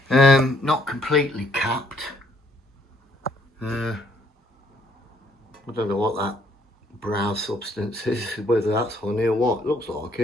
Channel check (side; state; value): both; normal; correlation 0.67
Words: Not completely capped. I don't know what that brown substance is, whether that's honey or what. It looks like